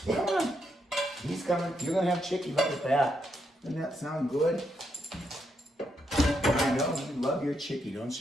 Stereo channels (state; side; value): normal; both; correlation 0.79